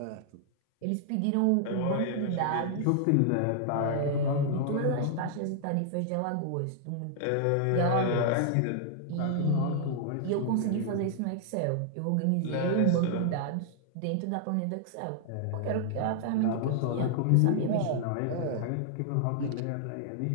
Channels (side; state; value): both; different; correlation -0.01